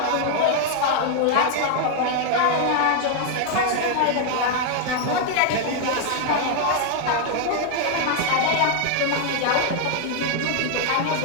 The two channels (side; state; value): both; different; correlation 0.00